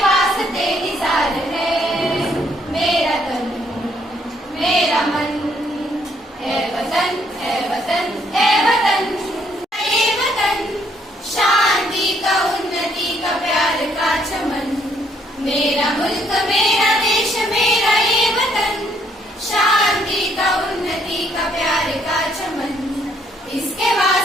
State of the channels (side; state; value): both; normal; correlation 0.69